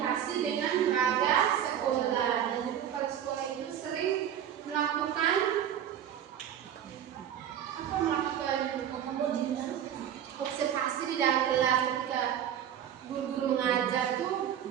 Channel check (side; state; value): left; quieter; 9.9 dB